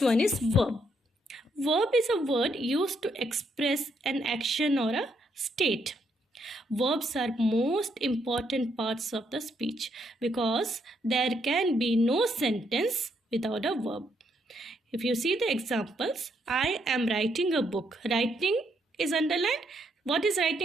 one is verb. Verb is a word used to express an action or a state. Verbs are most important parts of the speech because there can be no sentence without a verb. If you see the examples, I am writing a book. Writing is underlined. What is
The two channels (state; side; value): normal; both; correlation 0.75